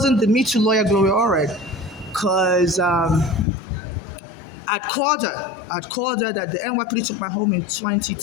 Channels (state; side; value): drops out; right; at 3.5 s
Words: the Me Too lawyer Gloria Allred, because I'd called her that the NYPD took my home in